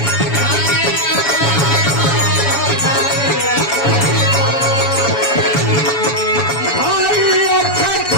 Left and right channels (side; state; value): right; late; 7.1 ms